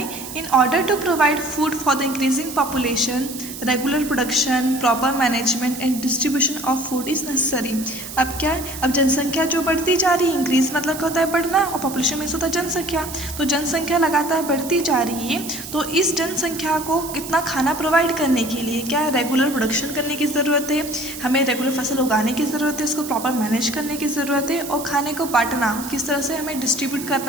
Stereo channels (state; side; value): noise; right; hiss, 11 dB below the sound